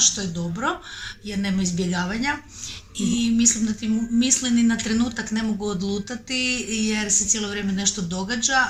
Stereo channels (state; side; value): identical; both; correlation 1.00